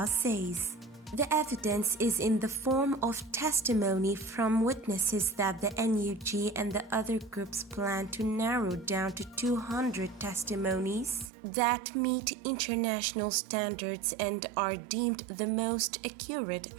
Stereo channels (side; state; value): left; drops out; at 11.3 s